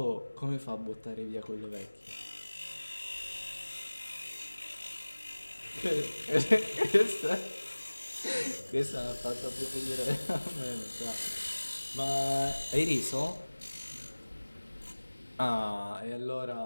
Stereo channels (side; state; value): both; inverted; correlation -1.00